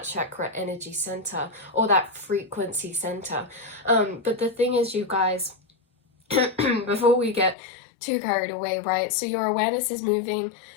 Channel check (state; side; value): drops out; right; at 7.6 s